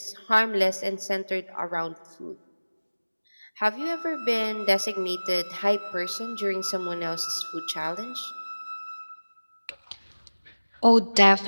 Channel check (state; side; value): inverted; both; correlation -1.00